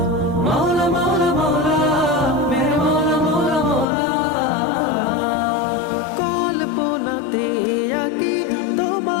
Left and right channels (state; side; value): drops out; right; at 3.9 s